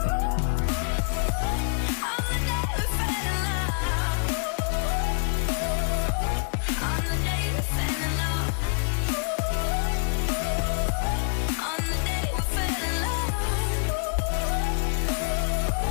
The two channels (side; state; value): right; silent; 56 dB below the other